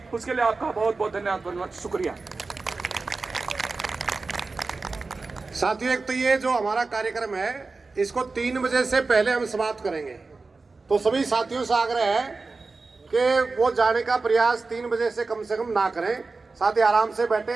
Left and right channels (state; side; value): quieter; left; 3.9 dB